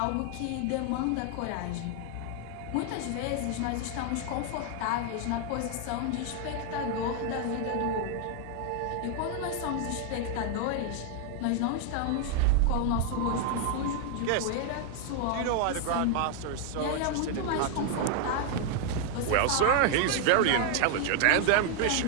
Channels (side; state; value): both; different; correlation 0.00